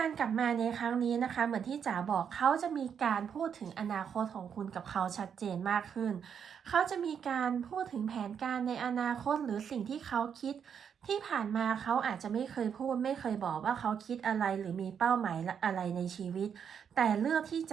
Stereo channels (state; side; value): quieter; left; 7.6 dB